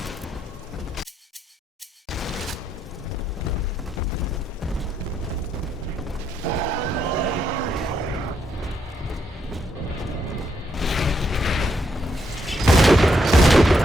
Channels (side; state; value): both; normal; correlation 0.77